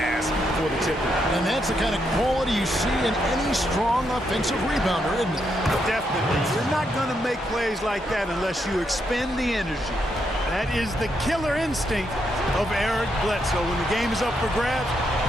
for the tipper. And that's the kind of quality you see in any strong offensive rebounder, isn't it? Definitely. You're not going to make plays like that unless you expend the energy. That is the killer instinct of Eric Bledsoe. When the game is up for grabs,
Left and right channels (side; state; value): both; normal; correlation 0.79